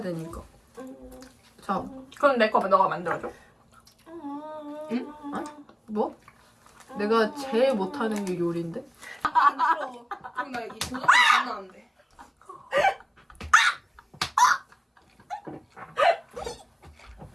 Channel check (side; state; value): both; identical; correlation 1.00